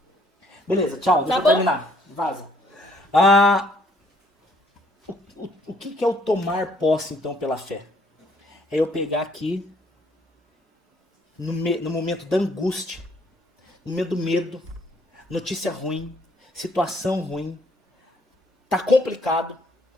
Beleza, tchau, deixa eu bom? terminar. Vaza. O que é o tomar posse, então, pela fé? É eu pegar aqui, no momento da angústia, no momento do medo, notícia ruim, situação ruim, tá complicado,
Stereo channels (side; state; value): both; normal; correlation 0.65